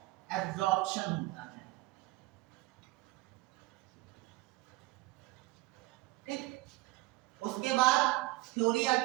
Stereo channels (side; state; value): left; quieter; 20.1 dB